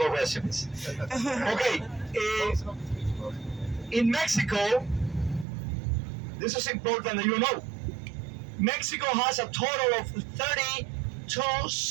recipes. Okay, in Mexico, this is important that you know. Mexico has a total of 32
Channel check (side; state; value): left; drops out; at 5.5 s